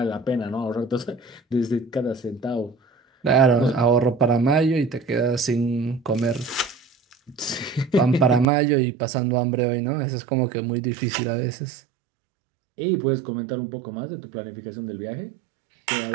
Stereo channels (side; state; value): left; drops out; at 8.5 s